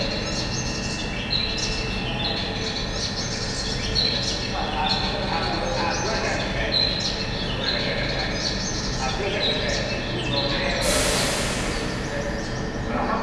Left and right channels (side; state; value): both; identical; correlation 1.00